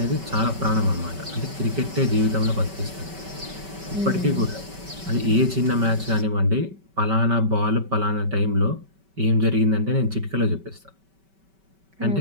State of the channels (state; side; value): late; left; 5.2 ms